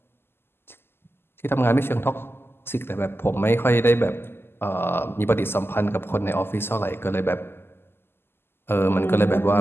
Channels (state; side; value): late; right; 0.11 ms